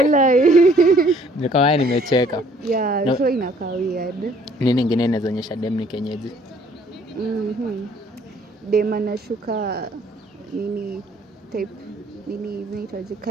Nikawa nimecheka. Yeah, no. So inakaa weird. Nini nyingine inaonyesha dem ni kienyeji? Dem anashuka nini type nini zinaitwaje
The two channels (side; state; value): both; normal; correlation 0.60